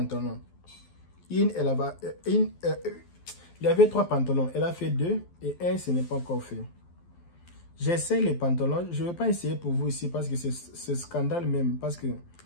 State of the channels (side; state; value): right; late; 12 ms